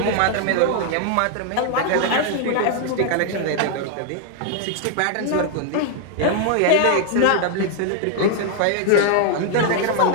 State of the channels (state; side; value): different; both; correlation 0.00